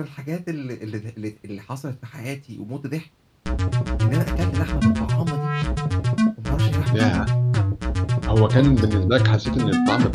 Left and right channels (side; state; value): both; identical; correlation 1.00